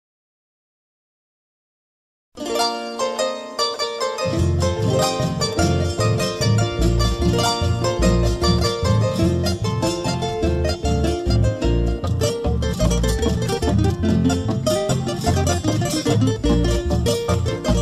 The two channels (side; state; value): both; identical; correlation 1.00